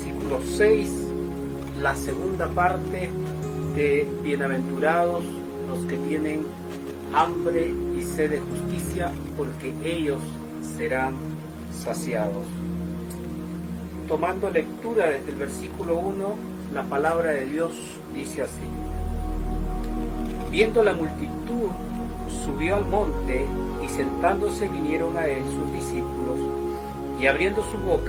6, la segunda parte de bienaventurados los que tienen hambre y sed de justicia, porque ellos serán saciados. Tomando lectura desde el versículo 1, la palabra de Dios dice así: Viendo la multitud, subió al monte, y sentándose vinieron a él sus discípulos, y abriendo su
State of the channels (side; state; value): both; identical; correlation 1.00